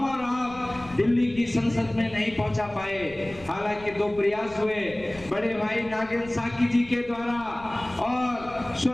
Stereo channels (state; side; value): noise; left; rumble, 20 dB below the sound